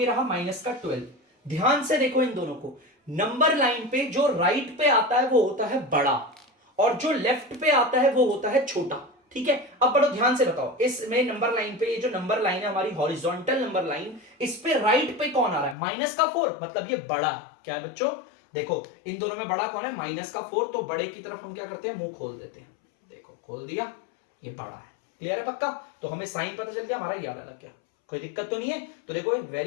रहा माइनस का 12। ध्यान से देखो इन दोनों को, नंबर लाइन पे जो राइट पे आता है वो होता है बड़ा, और जो लेफ्ट पे आता है वो होता है छोटा। ठीक है, अब बड़ो ध्यान से बताओ, इसमें नंबर लाइन पे, ये जो नंबर लाइन है हमारी हॉरिजॉन्टल नंबर लाइन, इस पे राइट पे कौन आ रहा है, माइनस का 4, मतलब ये बड़ा है। क्या है बच्चों, देखो इन दोनों में बड़ा कौन है, माइनस का 4, तो बड़े की तरफ हम क्या करते हैं, मुंह खोल देते हैं। देखो खोल दिया, ये बड़ा है। क्लियर है पक्का, तो हमें साइन पता चल गया, हमारा ये वाला लग गया। कोई दिक्कत तो नहीं है। तो देखो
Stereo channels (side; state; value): right; drops out; at 15.8 s